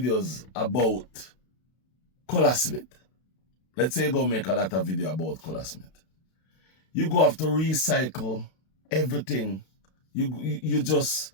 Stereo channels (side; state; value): right; late; 32 ms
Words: about Colasmith, let's say you go make a lot of video about Colasmith, you go have to recycle everything. It